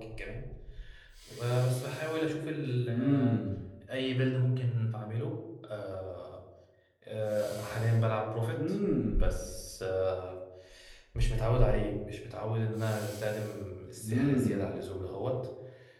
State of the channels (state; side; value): identical; both; correlation 1.00